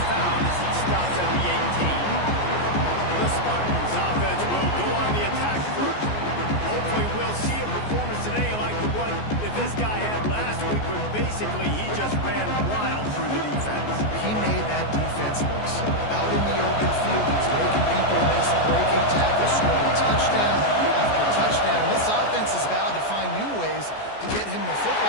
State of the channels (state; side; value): late; right; 14 ms